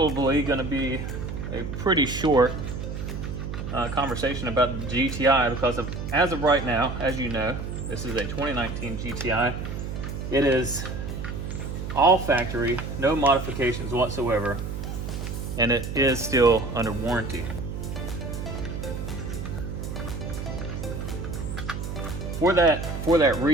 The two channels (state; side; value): noise; right; hum, 6 dB below the sound